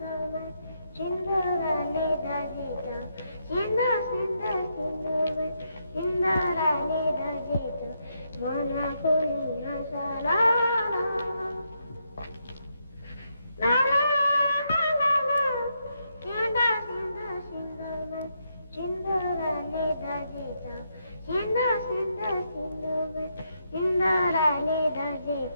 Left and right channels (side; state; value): both; inverted; correlation -0.80